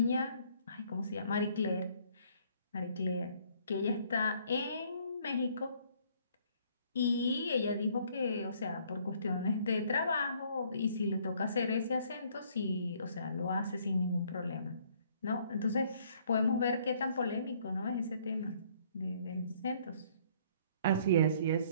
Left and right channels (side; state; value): both; inverted; correlation -0.62